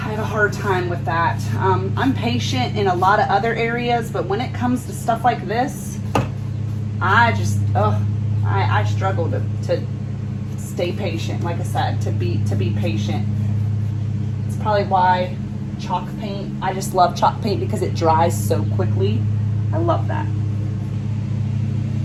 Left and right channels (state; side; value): identical; both; correlation 1.00